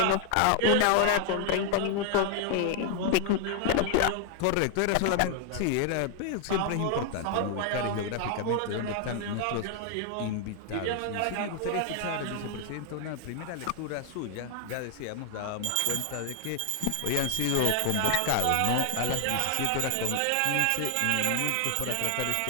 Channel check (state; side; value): different; both; correlation 0.00